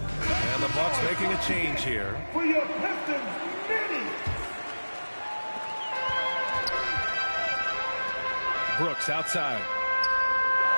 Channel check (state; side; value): inverted; both; correlation -1.00